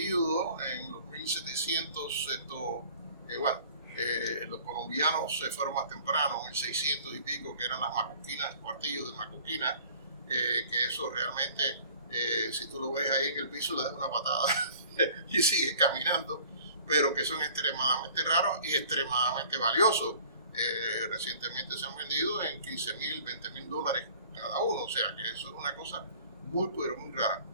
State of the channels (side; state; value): both; inverted; correlation -0.49